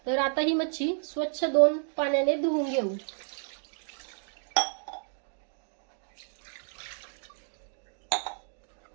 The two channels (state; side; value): silent; left; digital silence